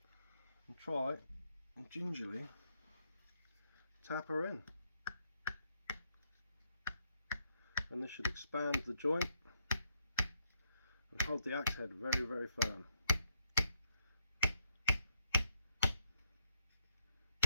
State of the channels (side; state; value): both; inverted; correlation -0.74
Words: And try and gingerly tap her in, and this should expand the joint and hold the axe head very firm.